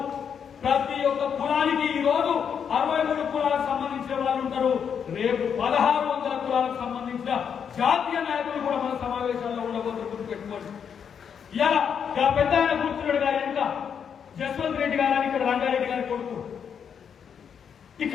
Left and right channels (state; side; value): quieter; right; 7.4 dB